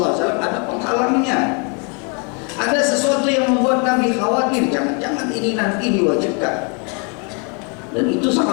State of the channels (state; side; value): quieter; right; 35.6 dB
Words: ada penghalangnya. Ada sesuatu yang membuat Nabi khawatir, jangan-jangan ini nanti diwajibkan. Dan itu